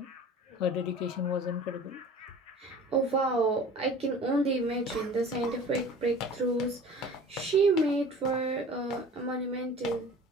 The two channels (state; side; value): normal; both; correlation 0.43